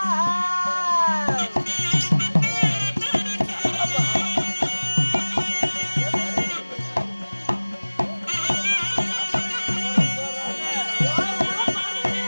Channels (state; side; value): inverted; both; correlation -1.00